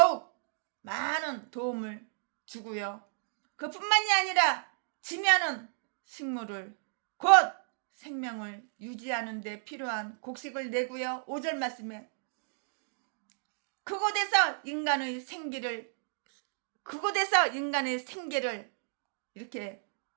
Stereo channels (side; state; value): left; silent; digital silence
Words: 많은 도움을 주고요. 그뿐만이 아니라 지면은 식물을 곧 생명을 유지하는 데 필요한 곡식을 내고요. 5절 말씀에 그곳에서 인간의 생기를 이렇게